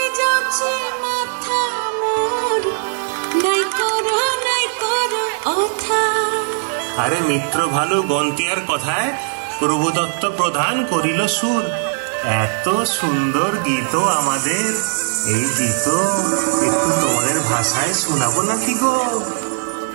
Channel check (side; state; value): left; silent; 67 dB below the other